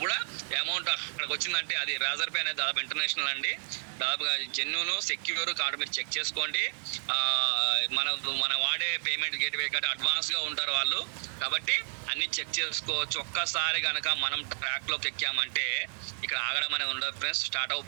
కూడా అమౌంట్ అక్కడికి వచ్చిందంటే అది రేజర్ పే అనేది దాదాపు ఇంటర్నేషనల్ అండి, దాదాపుగా జెన్యూన్ సెక్యూర్ కార్డు మీరు చెక్ చేసుకోండి. మన వాడే పేమెంట్ గేట్వే కాబట్టి అడ్వాన్స్గా ఉంటారు వాళ్ళు, కాబట్టి అన్ని చెక్ చేసుకోవచ్చు. ఒక్కసారి కనుక మనం ట్రాక్లోకి ఎక్కామంటే ఇక్కడ ఆగడం అనేది ఉండదు ఫ్రెండ్స్. స్టార్ట్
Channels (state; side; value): silent; left; 57 dB below the other